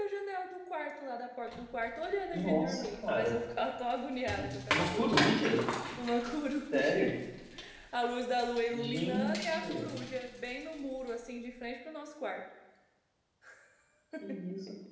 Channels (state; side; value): identical; both; correlation 1.00